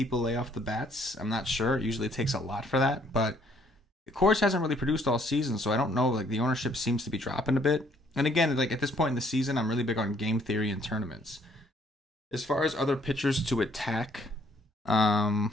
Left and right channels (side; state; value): both; normal; correlation 0.64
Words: lay off the bats. I'm not sure. It usually takes a lot for that, but Coors hasn't really produced all season, so I don't know. Like the ownership seems to be dropping a bit. And again, like at this point in the season, I'm really big on game theory and tournaments. As far as other pitchers to attack,